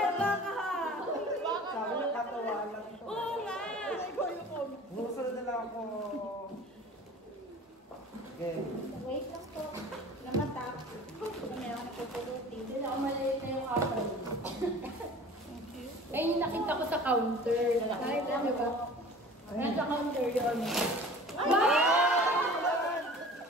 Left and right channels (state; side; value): normal; both; correlation 0.43